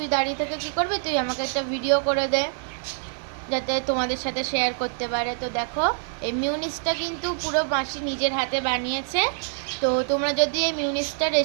দাঁড়িয়ে থেকে কী করবি, তুই আমাকে একটা ভিডিও করে দে যাতে তোমাদের সাথে শেয়ার করতে পারে। তো দেখো এই মিউনিসটা কিন্তু পুরো মাসি নিজের হাতে বানিয়েছে। তো তোমরা যদি এই মিউনিসটার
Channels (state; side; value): silent; left; digital silence